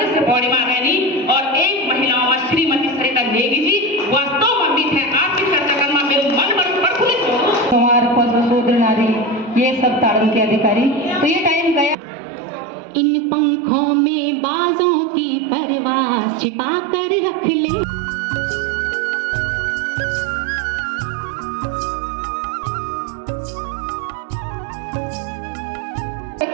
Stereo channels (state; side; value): drops out; left; at 12.0 s